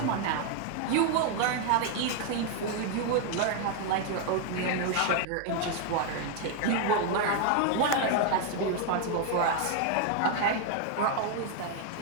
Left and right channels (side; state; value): both; different; correlation 0.00